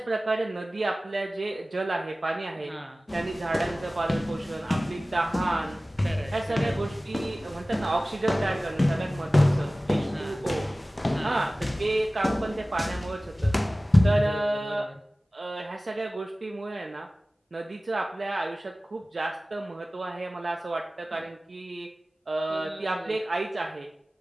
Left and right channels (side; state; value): both; normal; correlation 0.97